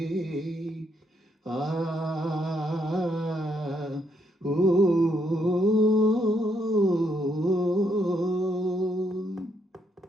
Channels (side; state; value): both; normal; correlation 0.75